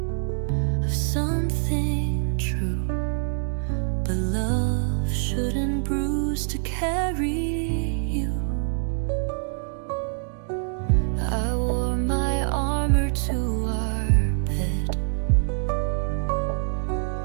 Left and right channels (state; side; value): silent; left; 62 dB below the other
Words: of something true. But love shouldn't bruise to carry you. I wore my armor to our bed,